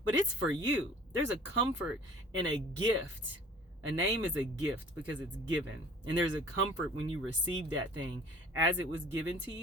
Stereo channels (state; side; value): normal; both; correlation 0.48